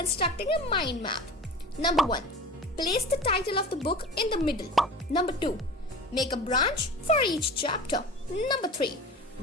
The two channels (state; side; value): normal; both; correlation 0.36